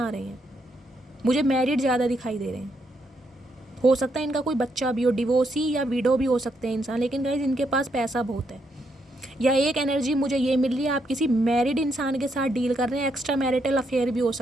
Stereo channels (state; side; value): normal; both; correlation 0.77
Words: रहे हैं। मुझे मैरिड ज़्यादा दिखाई दे रहे हैं, हो सकता है इनका कोई बच्चा भी हो, डिवोर्सी या विडो भी हो सकते हैं इंसान, लेकिन गाइज इनके पास पैसा बहुत है। या एक एनर्जी मुझे ये मिल रही है, आप किसी मैरिड इंसान के साथ डील कर रहे हैं, एक्स्ट्रा मैरिटल अफेयर भी हो